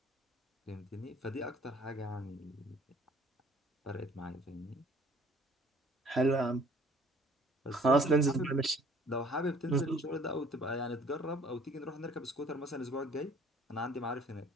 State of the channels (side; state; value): both; normal; correlation 0.56